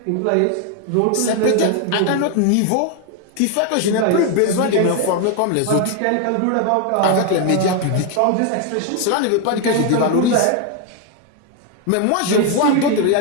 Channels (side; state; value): both; different; correlation 0.01